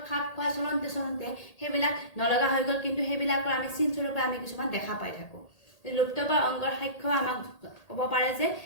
খাপ খুৱাই চলন্তে সেইবিলাক নলগা হৈ গ'ল কিন্তু সেইবিলাকৰ আমি চিনস্বৰূপে আমি কিছুমান দেখা পাই থাকোঁ লুপ্তপ্ৰায় অংগৰ সাক্ষ্য আমাক ক'ব পাৰে যে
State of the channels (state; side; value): late; right; 1.8 ms